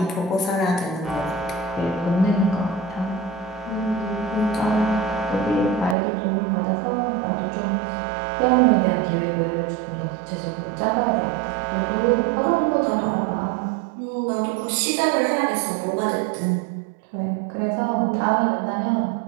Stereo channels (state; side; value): drops out; left; at 6.0 s